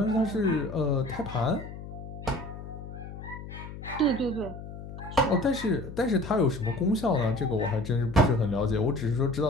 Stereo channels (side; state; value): left; noise; hum, 11 dB below the sound